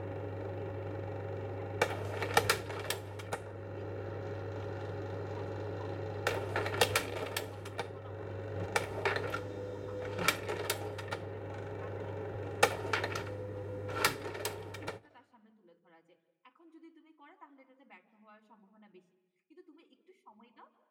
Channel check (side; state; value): both; identical; correlation 1.00